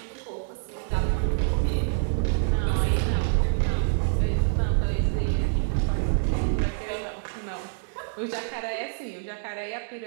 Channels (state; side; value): silent; left; digital silence